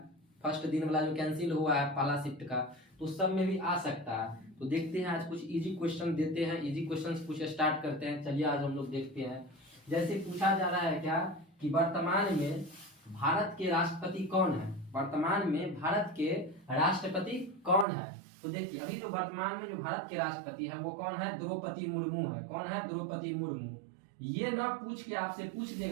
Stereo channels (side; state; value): left; drops out; at 17.9 s